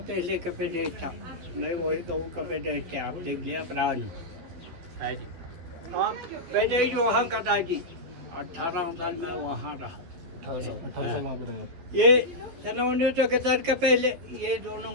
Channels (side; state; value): left; late; 12 ms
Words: पहले का पेटेज था। मैं वही गाँव का पेटेज था, आप देख लिया पुरानी है जी। हाँ, पेटेज वहाँ का था जी। 18 साल मैं वहाँ रहा। 18 साल वहाँ पे रहे आप। ये सन 1961 का पहले ये दोनों